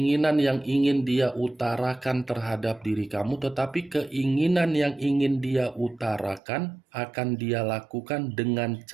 yang ingin dia utarakan terhadap diri kamu, tetapi keinginan yang ingin dia utarakan akan dia lakukan dengan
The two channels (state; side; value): drops out; left; at 6.4 s